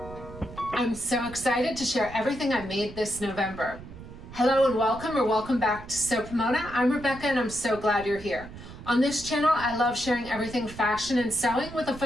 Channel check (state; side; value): noise; right; rumble, 14 dB below the sound